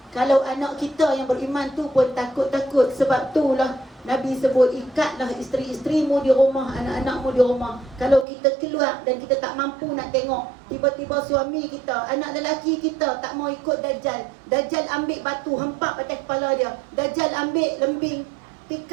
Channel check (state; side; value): drops out; left; at 8.2 s